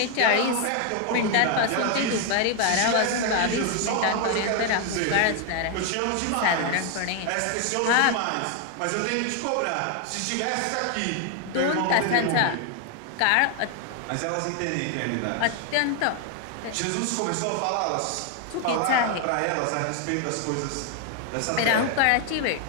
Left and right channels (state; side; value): different; both; correlation 0.01